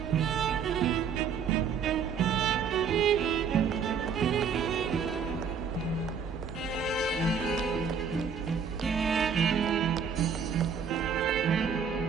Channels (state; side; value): quieter; left; 6.4 dB